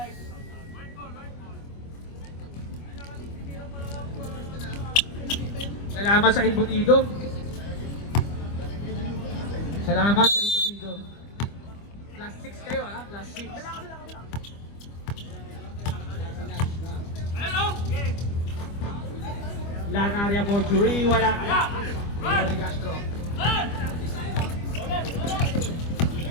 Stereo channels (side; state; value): right; late; 25 ms